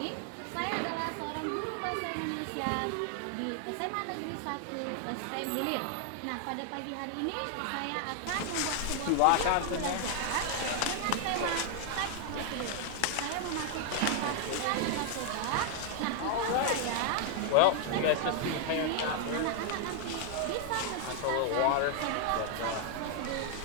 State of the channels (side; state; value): both; different; correlation 0.00